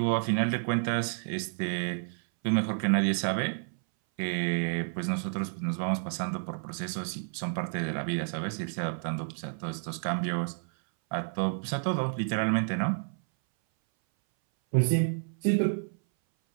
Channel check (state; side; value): silent; left; 58 dB below the other